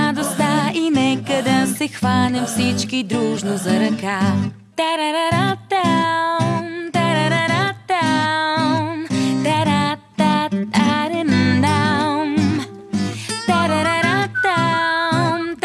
и нека да се хванем всички дружно за ръка.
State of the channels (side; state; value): both; identical; correlation 1.00